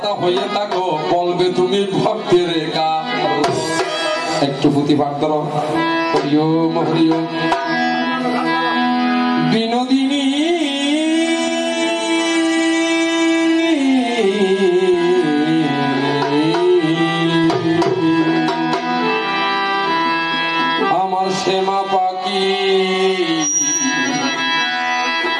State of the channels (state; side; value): identical; both; correlation 1.00